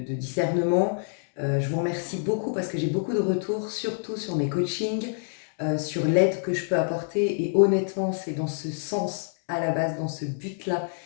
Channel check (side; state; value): right; silent; 60 dB below the other